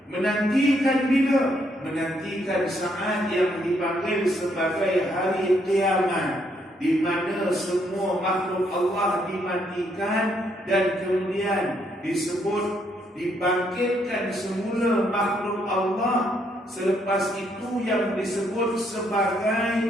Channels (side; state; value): both; normal; correlation 0.73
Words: menantikan bila? Menantikan saat yang dipanggil sebagai hari kiamat, di mana semua makhluk Allah dimatikan dan kemudian disebut dibangkitkan semula makhluk Allah. Selepas itu yang disebut